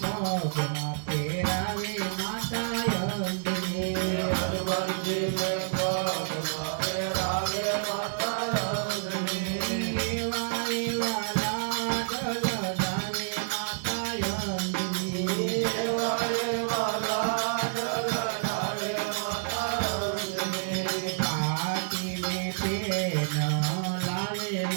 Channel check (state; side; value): silent; left; digital silence